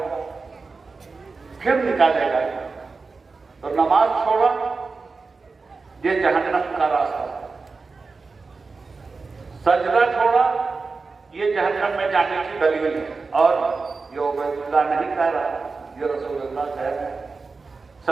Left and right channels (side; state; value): left; quieter; 4.2 dB